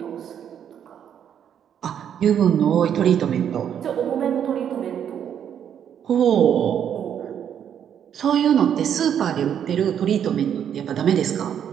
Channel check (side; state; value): left; quieter; 9.0 dB